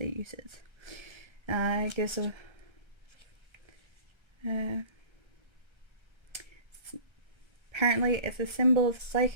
uses. It gives a apparently it's a symbol of the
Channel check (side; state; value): left; late; 1.3 ms